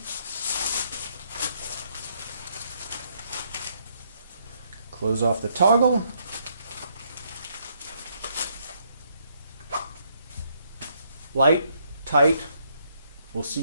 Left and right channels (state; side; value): inverted; both; correlation -0.71